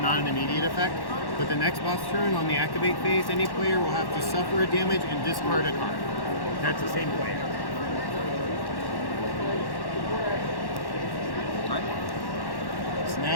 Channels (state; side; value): late; right; 1.1 ms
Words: not an immediate effect. But the next boss turn, on the activate phase, any player will have to suffer a damage and discard a card. That's the same player. So